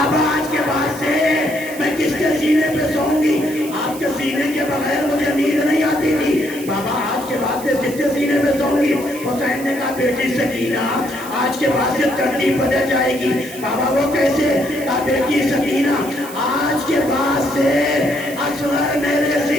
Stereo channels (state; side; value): noise; right; hiss, 15 dB below the sound